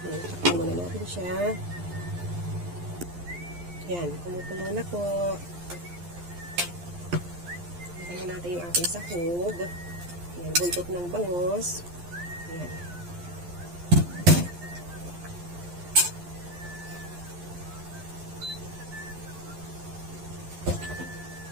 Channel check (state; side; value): late; left; 11 ms